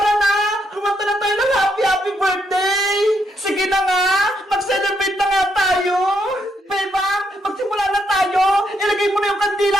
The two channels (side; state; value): both; normal; correlation 0.76